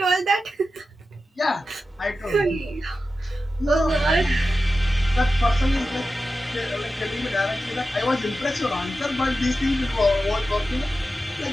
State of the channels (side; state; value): both; normal; correlation 0.92